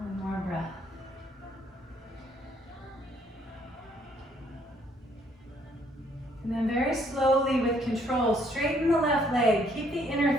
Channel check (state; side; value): normal; both; correlation 0.67